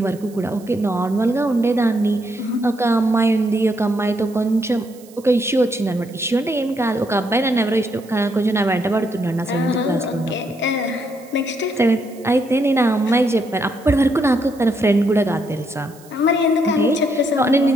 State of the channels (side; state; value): right; noise; hiss, 25 dB below the sound